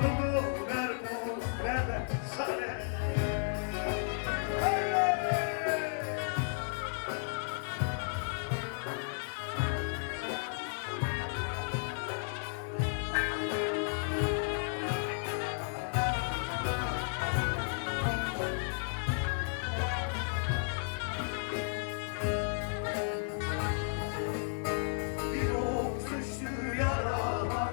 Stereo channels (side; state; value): right; silent; digital silence